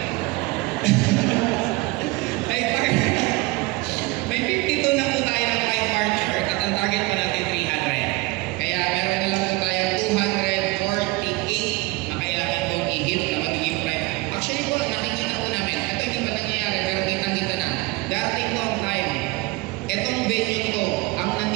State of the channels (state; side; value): quieter; left; 22.5 dB